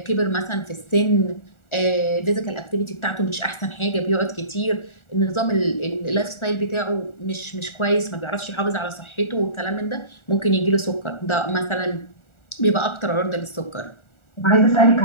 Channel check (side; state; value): right; late; 1.4 ms